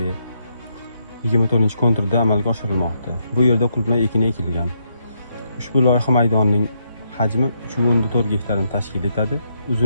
24-konturda amalga oshirilmoqda. Bu yerda qulupnay ekini ekilgan. Ushbu loyiha maydonining hajmi 3.4 gektarni tashkil etadi.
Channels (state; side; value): inverted; both; correlation -0.78